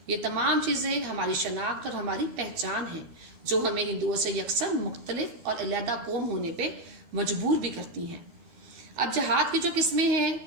یہ تمام چیزیں ہماری شناخت اور ہماری پہچان ہیں، جو ہمیں ہندوؤں سے یکسر مختلف اور علیحدہ قوم ہونے پہ مجبور بھی کرتی ہیں۔ اب جہاد کی جو قسمیں ہیں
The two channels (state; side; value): late; left; 12 ms